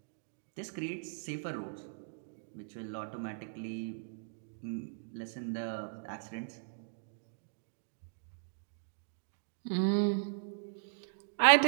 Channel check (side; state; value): left; silent; digital silence